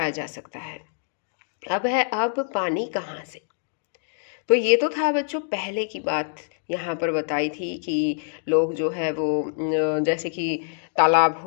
जा सकता है। अब पानी कहाँ से? तो ये तो था बच्चों पहले की बात, यहाँ पर बताई थी कि लोग जो है वो जैसे कि तालाब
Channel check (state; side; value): silent; right; digital silence